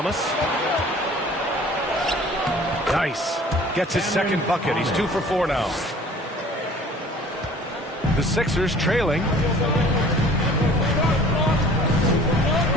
Nice. Gets his second bucket. He's 2 for 4 now. The Sixers trailing.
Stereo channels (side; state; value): both; normal; correlation 0.49